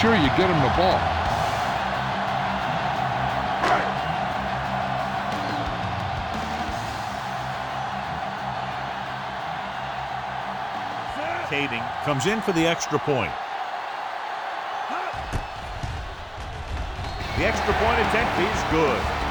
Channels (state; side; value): identical; both; correlation 1.00